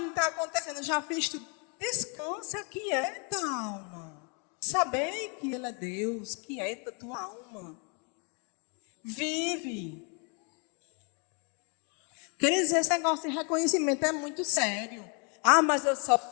está acontecendo, eu já fiz tudo. Descansa, quieta, alma. Saber que Ele é Deus, quieta tua alma. Vive. Queridos, esse negócio de reconhecimento é muito sério. Mas eu só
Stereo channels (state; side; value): quieter; right; 36.1 dB